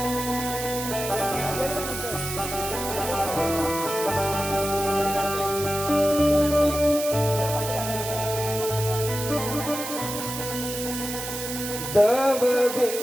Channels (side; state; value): right; noise; hiss, 6 dB below the sound